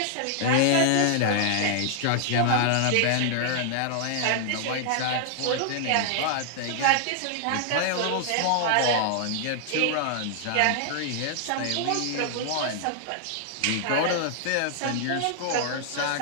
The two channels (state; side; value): different; both; correlation 0.00